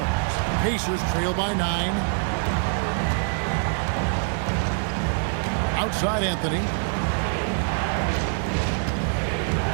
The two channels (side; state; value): left; silent; 58 dB below the other